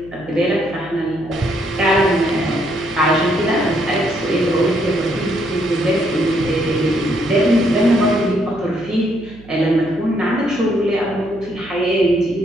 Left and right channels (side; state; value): right; noise; hum, 21 dB below the sound